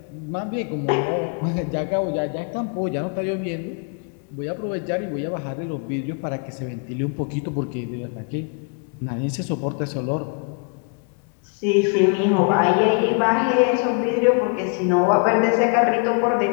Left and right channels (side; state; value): right; quieter; 37.5 dB